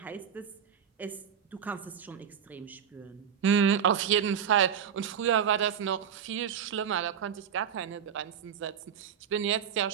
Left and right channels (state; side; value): quieter; left; 8.1 dB